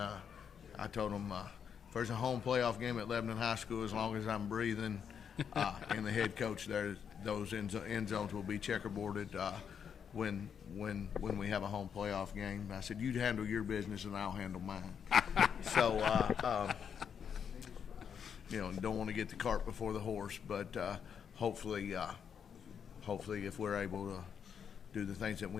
I told them, if there's a home playoff game at Lebanon High School, as long as I'm breathing and the head coach there, those end zones will be checkerboarded when we have a home playoff game. I said, you handle your business and I'll handle mine. So, don't want to get the cart before the horse, but hopefully if we're able do the things that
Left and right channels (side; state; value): right; quieter; 7.5 dB